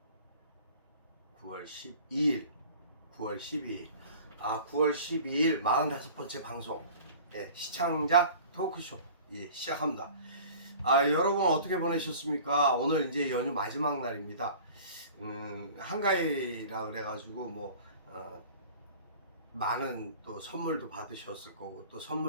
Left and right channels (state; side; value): inverted; both; correlation -0.44